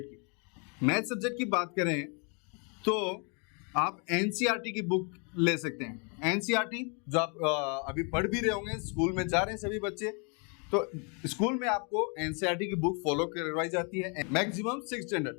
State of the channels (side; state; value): right; quieter; 36.0 dB